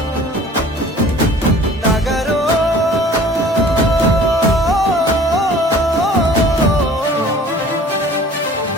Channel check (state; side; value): normal; both; correlation 0.48